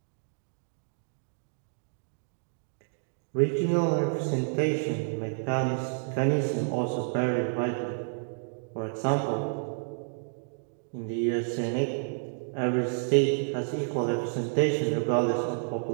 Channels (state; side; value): silent; left; digital silence